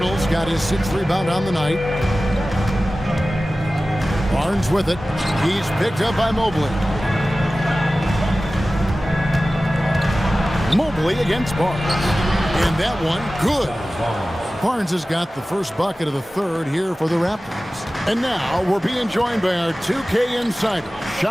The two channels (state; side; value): normal; both; correlation 0.96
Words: got his 6th rebound on the night. Barnes with it. He's picked up by Mobley. Mobley against Barnes. And that one, good. Barnes has got the first bucket of the third here for the Raptors. And now we're being joined by our 2K insider,